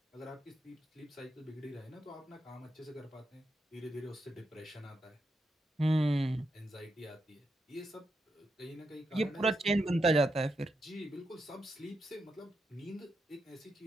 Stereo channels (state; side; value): normal; both; correlation 0.84